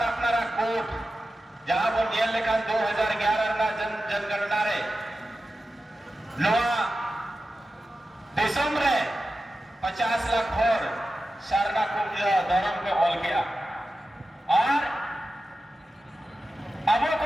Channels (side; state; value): both; normal; correlation 0.93